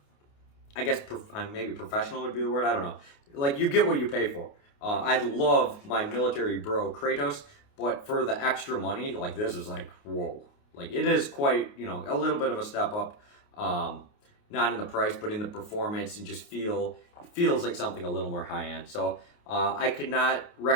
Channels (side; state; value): right; late; 28 ms